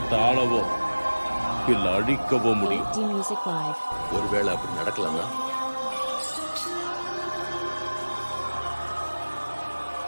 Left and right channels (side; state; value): both; inverted; correlation -1.00